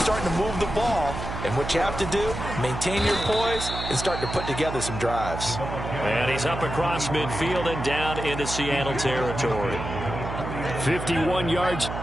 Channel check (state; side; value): noise; right; hum, 6 dB below the sound